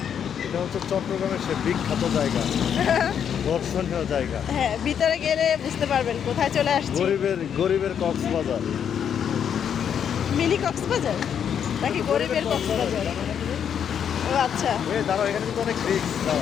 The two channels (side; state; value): right; quieter; 8.3 dB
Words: এটা হচ্ছে চট্টগ্রামের সে বিখ্যাত জায়গা, দর্শনীয় জায়গা। হ্যাঁ, ভিতরে গেলে বুঝতে পারবেন কোথায় চলে আসছি। গরিবের কক্সবাজার। মিনি কক্সবাজার নাকি গরিবের কক্সবাজার? ও আচ্ছা। এই দাঁড়াও, এখানে কিন্তু অনেক রিস্ক।